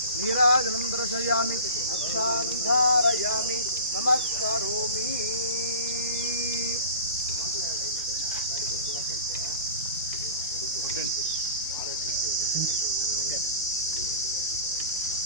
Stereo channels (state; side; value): inverted; both; correlation -0.39